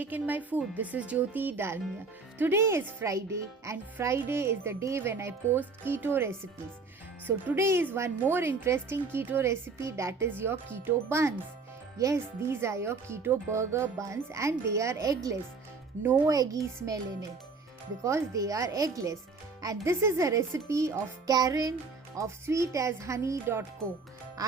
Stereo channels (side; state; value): left; quieter; 4.4 dB